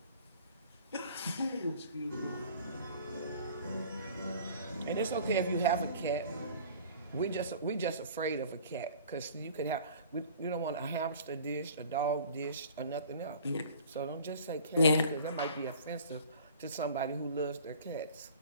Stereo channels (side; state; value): both; inverted; correlation -0.47